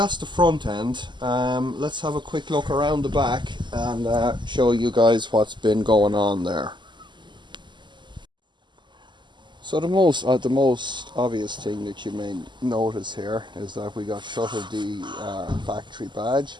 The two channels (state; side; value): late; left; 0.22 ms